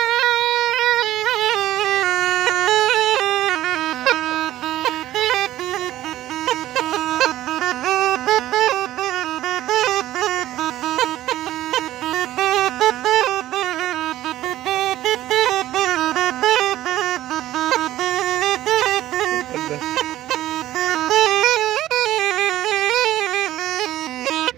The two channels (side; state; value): left; quieter; 14.3 dB